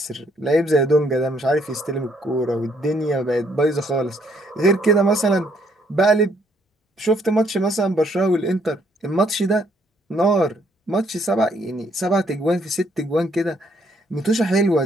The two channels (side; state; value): both; normal; correlation 0.68